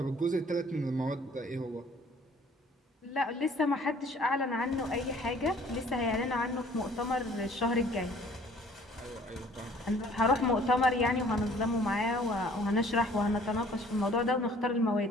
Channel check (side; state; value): both; normal; correlation 0.55